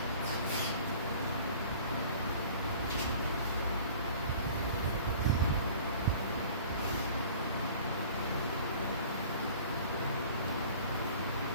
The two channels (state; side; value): inverted; both; correlation -0.47